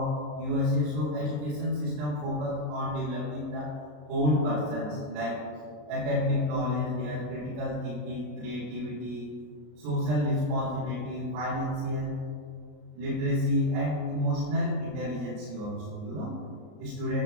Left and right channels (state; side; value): late; left; 33 ms